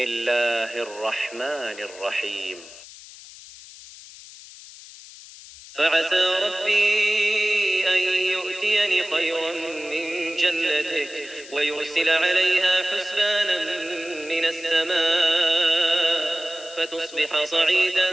الرحمن الرحيم. فعسى ربي أن يؤتيني خيرا من جنتك ويرسل عليها حسبانا من السماء فتصبح صعيدا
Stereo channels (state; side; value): noise; left; hiss, 18 dB below the sound